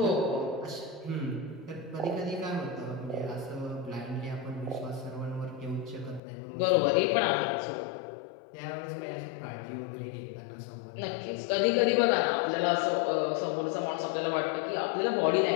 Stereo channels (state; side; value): drops out; right; at 6.2 s